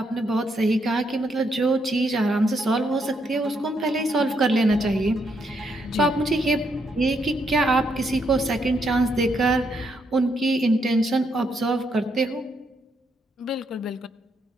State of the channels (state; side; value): normal; both; correlation 0.76